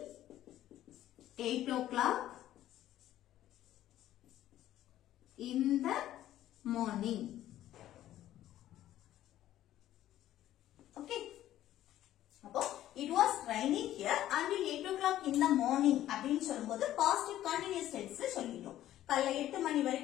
8 o'clock in the morning. Okay. அப்போ it was raining here until 8 o'clock in the morning அப்படின்னு சொல்லும்போது past continuous tense சொல்லிட்டோம். காலைல 8 மணி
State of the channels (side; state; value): right; quieter; 13.1 dB